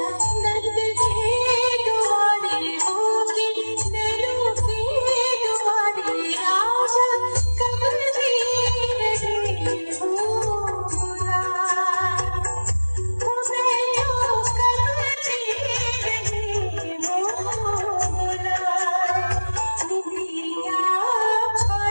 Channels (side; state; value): both; inverted; correlation -1.00